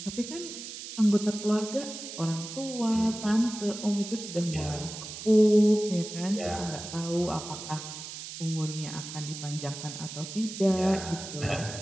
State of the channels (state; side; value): noise; right; hiss, 10 dB below the sound